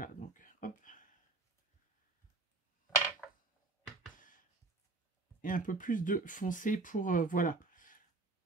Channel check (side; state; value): left; quieter; 3.5 dB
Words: donc hop. Et un peu plus de foncé pour, voilà.